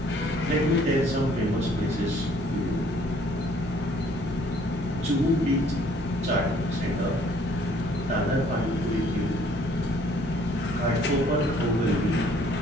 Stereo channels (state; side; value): normal; both; correlation 0.60